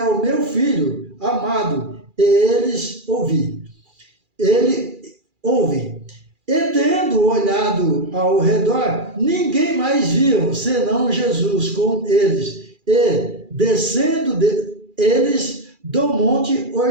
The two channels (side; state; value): left; late; 2.4 ms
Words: o meu filho amado, e eles ouvi. Ele ouve. E tendo olhado ao redor, ninguém mais viam, senão Jesus com eles. E descendo eles do monte,